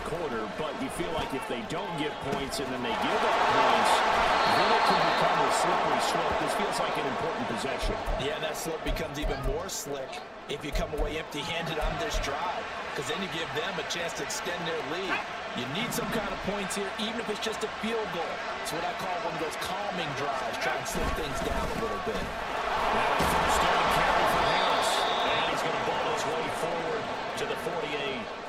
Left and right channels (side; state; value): both; identical; correlation 1.00